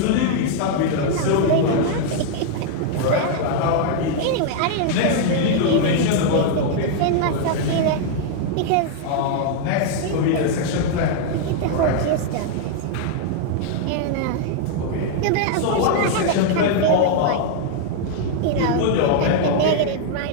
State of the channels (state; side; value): different; both; correlation 0.00